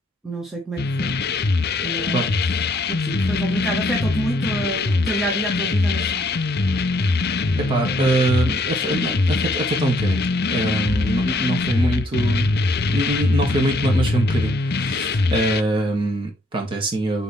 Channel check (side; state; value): both; normal; correlation 0.68